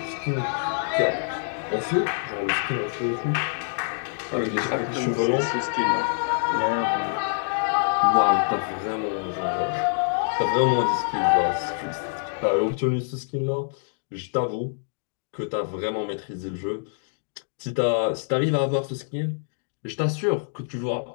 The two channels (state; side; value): silent; right; digital silence